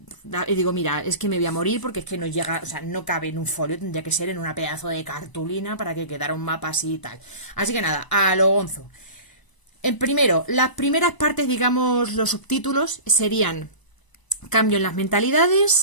digo, mira, es que me voy a morir porque es que no llega, o sea, no cabe en un folio, tendría que ser en una pedazo de cartulina para que quedara un mapa así y tal. Así que nada, a lo gonzo. Primero, las primeras partes, digamos, los subtítulos serían cambio en las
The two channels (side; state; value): right; late; 1.0 ms